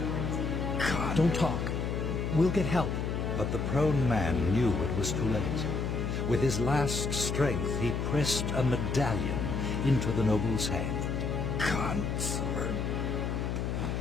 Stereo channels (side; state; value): left; noise; hum, 1 dB below the sound